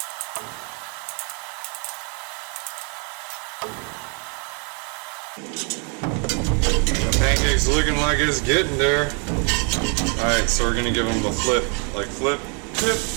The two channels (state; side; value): quieter; left; 37.3 dB